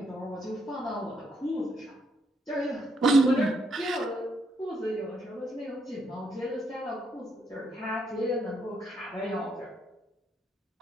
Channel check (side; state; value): both; normal; correlation 0.74